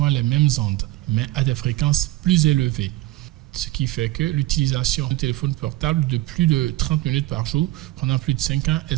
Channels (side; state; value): left; quieter; 17.2 dB